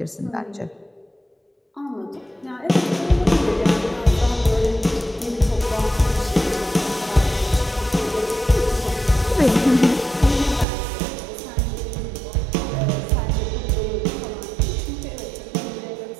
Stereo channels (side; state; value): left; drops out; at 10.7 s